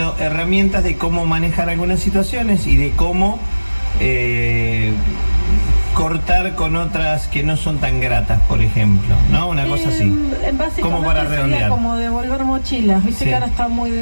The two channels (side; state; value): both; inverted; correlation -1.00